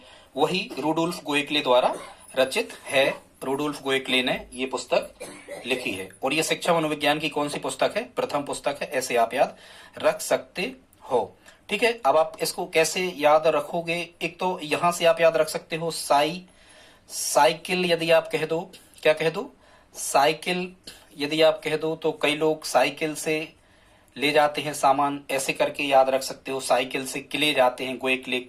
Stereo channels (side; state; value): both; identical; correlation 1.00